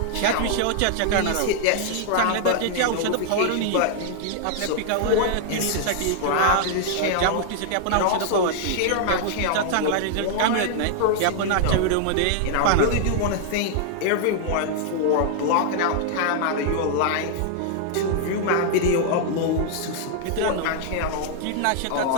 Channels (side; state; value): both; different; correlation 0.00